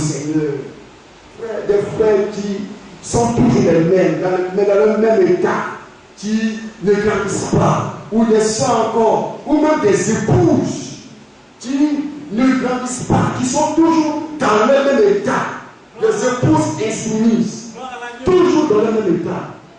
Des frères qui sont toujours les mêmes, mais dans le même état, qui ne grandissent pas, ou des soeurs encore, ou même des épouses qui ne grandissent pas, qui sont toujours dans le même état, des épouses insoumises, toujours dans le même état.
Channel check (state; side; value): identical; both; correlation 1.00